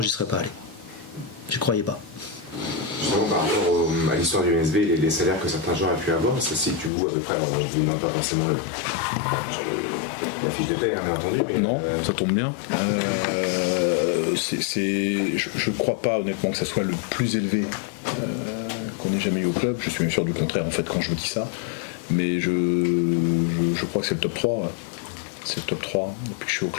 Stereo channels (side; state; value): right; drops out; at 6.9 s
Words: serais pas allé. J'y croyais pas. Justement, par rapport à l'histoire du MSB et les salaires que certains joueurs ont pu avoir, ça se situe où à peu près? Alors, je vous donne pas forcément la fiche de paie, bien entendu. Mais non, ça tombe bien. Je ne crois pas honnêtement que ça soit le plus élevé qu'on ait jamais eu au club. Je suis même sûr du contraire en fait quand je vous dis ça. Mais je crois que c'est le top 3. C'est le top 3 depuis que je suis au